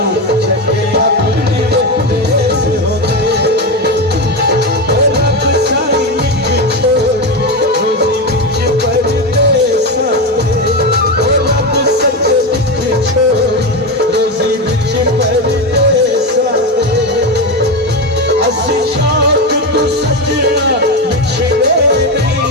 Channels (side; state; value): both; normal; correlation 0.15